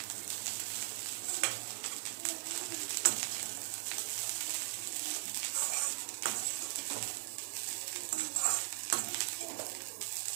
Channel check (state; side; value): silent; left; digital silence